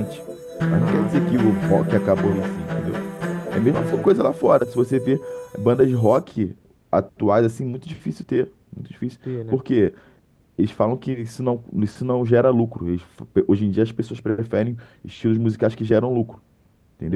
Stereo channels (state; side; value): identical; both; correlation 1.00